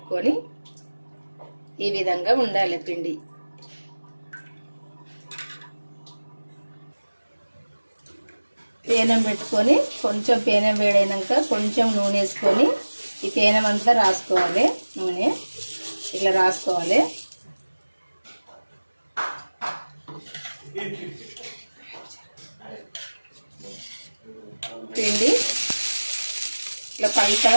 ఈ విధంగా ఉండాలి పిండి. పేనం పెట్టుకొని కొంచెం పేనం వేడైనాక కొంచెం నూనె వేసుకొని ఈ పేనం అంతా రాసుకోవాలి. నూనె ఇట్లా రాసుకోవాలి. పిండి ఇట్లా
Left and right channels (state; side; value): inverted; both; correlation -1.00